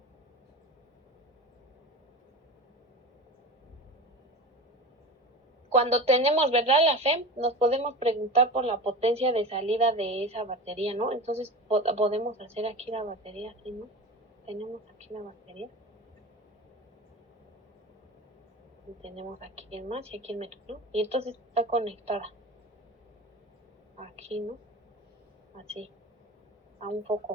Cuando tenemos, ¿verdad? La FEM, nos podemos preguntar por la potencia de salida de esa batería, ¿no? Entonces podemos hacer aquí la batería, así, ¿no? Tenemos aquí la batería. Y tenemos aquí el más y aquí el menos, ¿no? Y entonces está conectada. Aquí, ¿no? Así. A un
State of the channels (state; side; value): normal; both; correlation 0.31